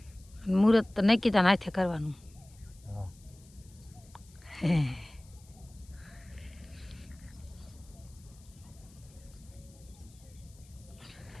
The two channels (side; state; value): left; noise; hiss, 26 dB below the sound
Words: મુહૂર્ત તો નક્કી તાન હાથે કરવાનું.